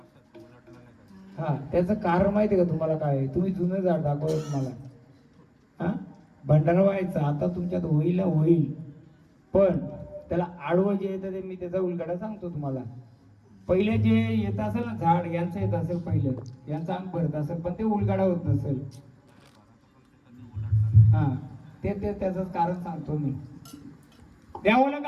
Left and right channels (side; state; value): both; identical; correlation 1.00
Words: हा, त्याचं कारण माहितीये का तुम्हाला? काय तुम्ही जुनं झाड दाखवलं तुम्हाला. हा, भंडारा व्हायचा आता तुमच्यात होईल पण त्याला आडवं जे येतं ते मी त्याचा उलगडा सांगतो तुम्हाला. पहिले जे येत असेल ना झाड यांचं येत असेल पहिलं, यांचं अंग भरत असेल पण ते उलगाडा होत नसेल. हा ते त्याचं कारण सांगतो मी. द्यावं